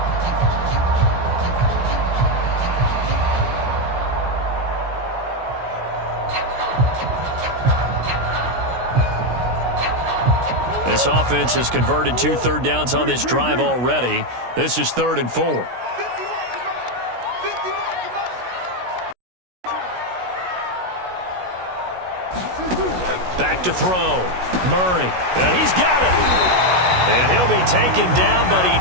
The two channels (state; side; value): late; left; 16 ms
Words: This offense has converted 2 third downs on this drive already. This is 3rd and 4. Back to throw. Murray. And he's got it. And he'll be taken down, but